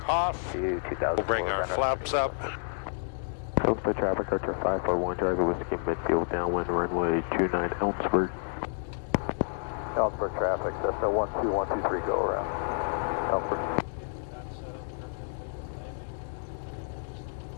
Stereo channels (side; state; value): right; silent; digital silence